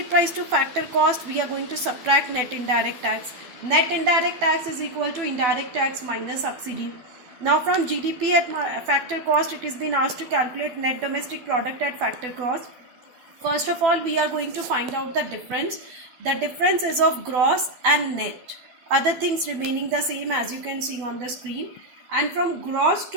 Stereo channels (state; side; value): late; left; 12 ms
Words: price to factor cost, we are going to subtract net indirect tax. Net indirect tax is equal to indirect tax minus subsidy. Now from GDP at factor cost, it is been asked to calculate net domestic product at factor cost. First of all, we are going to find out the difference. The difference is of gross and net. Other things remaining the same as you can see on the screen. And from gross